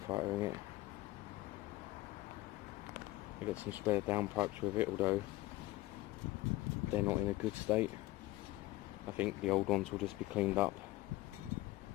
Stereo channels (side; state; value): right; quieter; 18.3 dB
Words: fightering it. I got some spare downpipes with it, although they're not in a good state. I think the old ones will just be cleaned up.